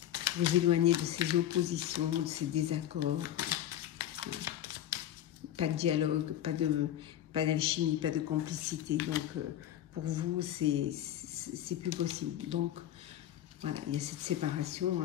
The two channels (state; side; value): quieter; right; 11.9 dB